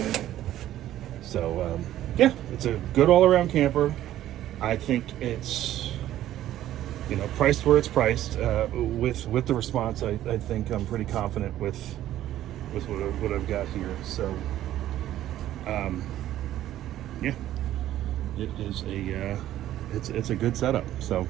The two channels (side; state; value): left; quieter; 13.0 dB